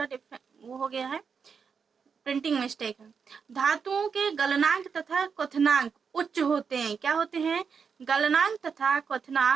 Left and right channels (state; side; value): quieter; left; 6.1 dB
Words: डिफरेंट वो हो गया है, प्रिंटिंग मिस्टेक है। धातुओं के गलनांक तथा क्वथनांक उच्च होते हैं। क्या होते हैं? गलनांक तथा